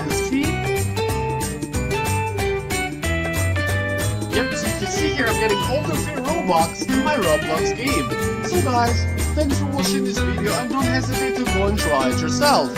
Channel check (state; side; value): identical; both; correlation 1.00